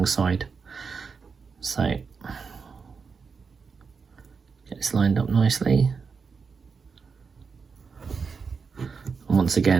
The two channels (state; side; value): quieter; left; 5.3 dB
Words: side. So get this lined up nicely. And once